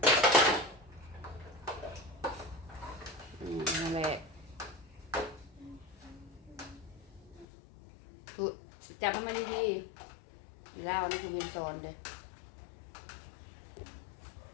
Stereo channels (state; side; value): drops out; right; at 7.5 s